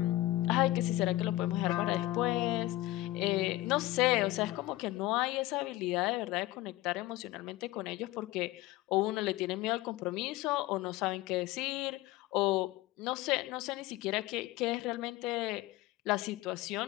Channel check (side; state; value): right; quieter; 17.2 dB